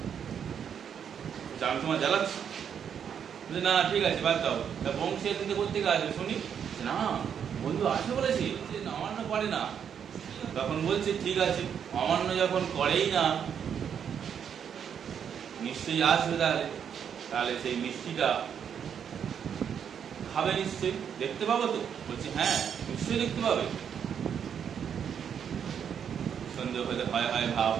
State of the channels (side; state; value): left; quieter; 8.0 dB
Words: আমি তোমার জ্বালাচ্ছি? না ঠিক আছে, বাদ দাও। তা বংশী এদিন করতে আসবে শুনি। না, বন্ধু আসবে বলেছি, অমান্য করে না। তখন বলছে, ঠিক আছে, অমান্য যখন করেই না, নিশ্চয়ই আসবে। তাহলে তাহলে সেই মিষ্টিটা খাবে নিশ্চয়ই, দেখতে পাবো তো? বলছে, হ্যাঁ নিশ্চয়ই দেখতে পাবে। সন্দেহ হলে হয় হয় ভাব,